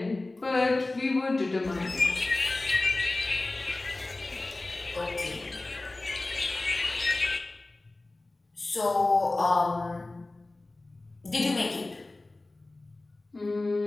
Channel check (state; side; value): quieter; right; 3.0 dB